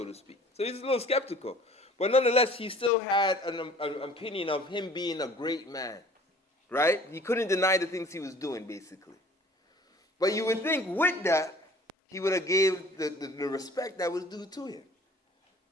to speak? So he's a little skeptical. But nonetheless, he still had an opinion of him being a great man, right? He couldn't deny the things he was doing, basically. But you would think with that, he would have gave the respect that was due to him.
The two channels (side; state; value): both; normal; correlation 0.50